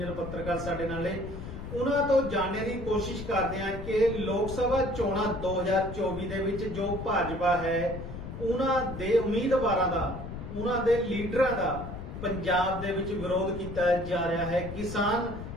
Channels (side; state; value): left; noise; rumble, 9 dB below the sound